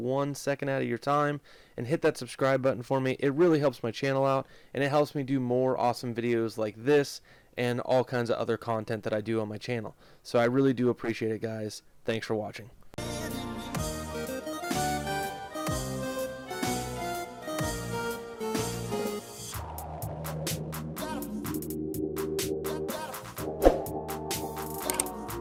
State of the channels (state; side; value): identical; both; correlation 1.00